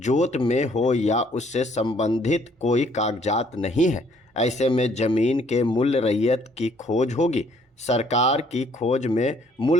में हो या उससे संबंधित कोई कागजात नहीं है। ऐसे में जमीन के मूल रैयत की खोज होगी। सरकार की खोज में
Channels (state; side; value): normal; both; correlation 0.63